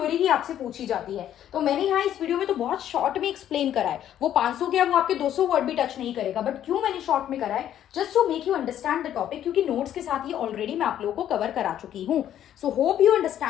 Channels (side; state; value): right; quieter; 11.0 dB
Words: ही आपसे पूछी जाती है, तो मैंने यहाँ इस वीडियो में तो बहुत शॉर्ट में एक्सप्लेन करा है। वो 500 क्या वो आपके 200 वर्ड भी टच नहीं करेगा, बट क्यों मैंने शॉर्ट में करा है, just to make you understand the topic, क्योंकि नोट्स के साथ ये ऑलरेडी मैं आप लोगों को कवर करा चुकी हूँ। सो होप यू